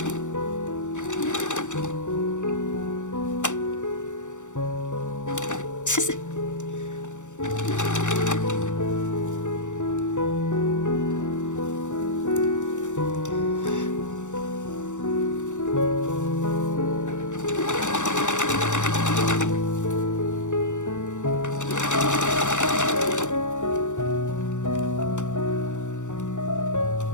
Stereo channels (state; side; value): late; right; 0.85 ms